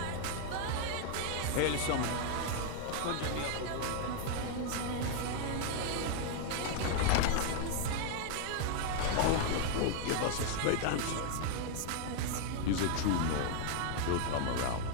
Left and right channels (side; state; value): both; different; correlation 0.00